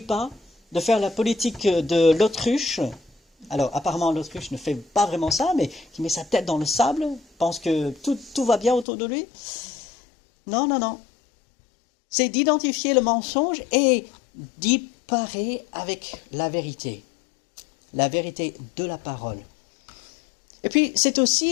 de faire la politique de l'autruche. Alors, apparemment, l'autruche ne fait pas vraiment ça, mais qui met sa tête dans le sable, pense que tout va bien autour de lui. Non. C'est d'identifier le mensonge et d'y parer avec la vérité de la parole. Et puis, c'est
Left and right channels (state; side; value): drops out; right; at 8.8 s